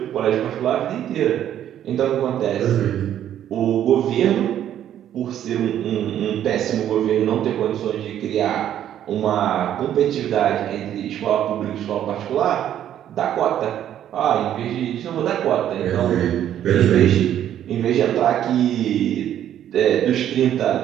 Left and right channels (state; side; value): quieter; left; 10.8 dB